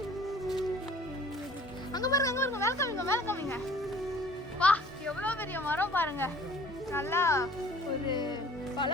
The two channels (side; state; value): both; normal; correlation 0.51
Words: அங்க பாருங்க, அங்க பாருங்க, மேல காமிங்க, மேல காமிங்க. வா, எவ்வளவு பெரிய மரம் பாருங்க. நல்லா ஒரு பல